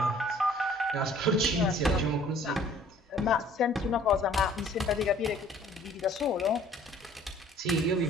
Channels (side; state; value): both; normal; correlation 0.55